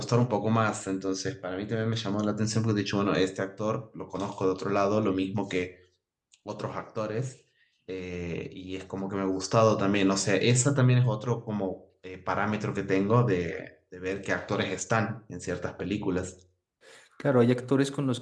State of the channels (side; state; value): both; identical; correlation 1.00